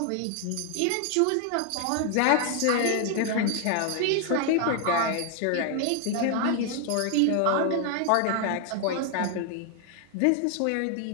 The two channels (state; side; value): different; both; correlation 0.00